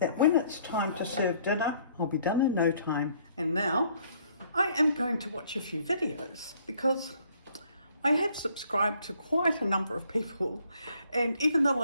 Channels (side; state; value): both; inverted; correlation -0.63